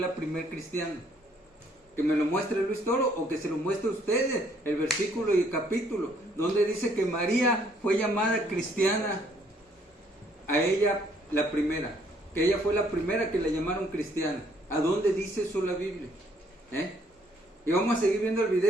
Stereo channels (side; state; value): both; normal; correlation 0.66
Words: primer cristiana? Que me lo muestre Luis Toro o que se lo muestre a ustedes el versículo y el capítulo donde dice que María fue llamada cristiana, a ella la primera, que ella fue la primera que la llamaron cristiana. ¿A dónde dice eso la Biblia? Y vamos a seguir viendo el